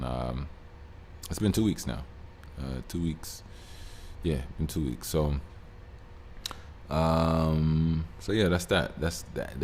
it's been 2 weeks now. 2 weeks. Yeah, been 2 weeks. So yeah, that's that.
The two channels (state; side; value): identical; both; correlation 1.00